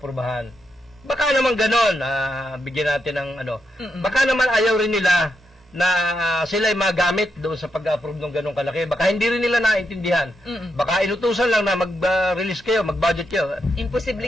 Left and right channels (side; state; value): both; normal; correlation 0.83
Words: Baka naman ganon, bigyan natin ng baka naman ayaw rin nila na sila ay magamit doon sa pag-approve ng ganong kalaki. Baka hindi rin nila naintindihan. Baka inutusan lang na mag-release kayo, mag-budget kayo.